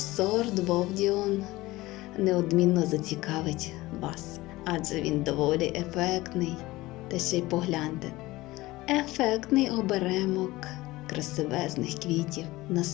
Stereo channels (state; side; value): quieter; right; 19.1 dB